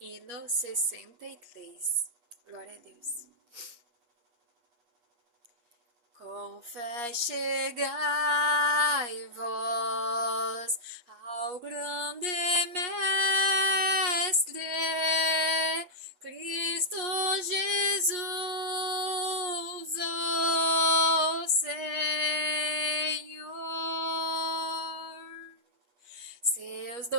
63. Glória a Deus. Com fé chegai vós ao grande Mestre, Cristo Jesus, o Senhor. Seus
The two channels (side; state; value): left; late; 8.4 ms